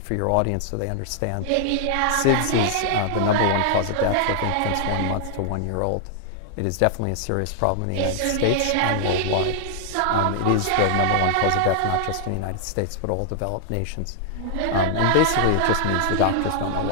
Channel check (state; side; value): different; both; correlation -0.01